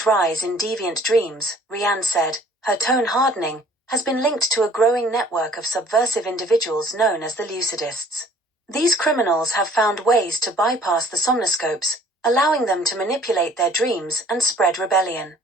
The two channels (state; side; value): normal; both; correlation 0.55